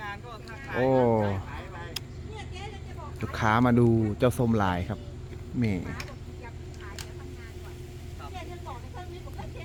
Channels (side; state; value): both; identical; correlation 1.00